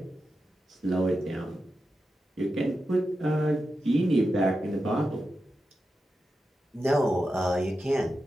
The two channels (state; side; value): normal; both; correlation 0.90